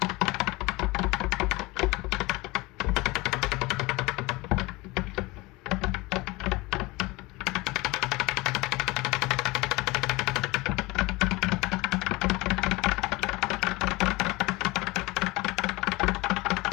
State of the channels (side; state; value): right; quieter; 22.5 dB